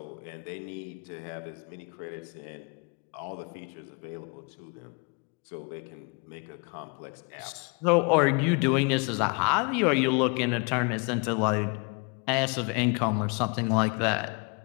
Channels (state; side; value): quieter; right; 32.9 dB